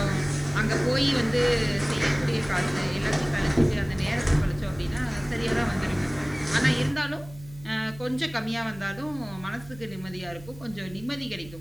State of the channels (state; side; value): noise; right; hum, 18 dB below the sound